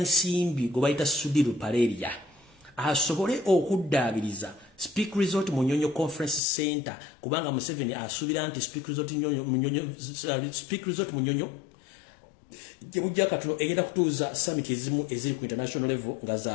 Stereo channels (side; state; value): right; drops out; at 6.4 s